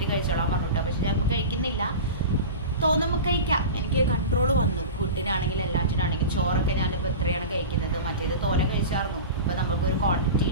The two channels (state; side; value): inverted; both; correlation -0.31